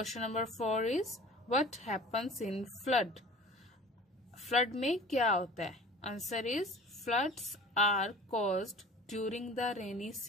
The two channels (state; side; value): normal; both; correlation 0.43